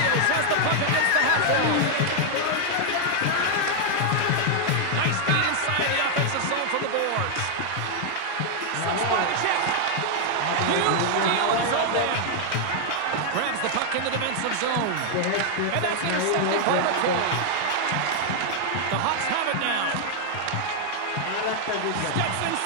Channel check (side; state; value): both; different; correlation 0.00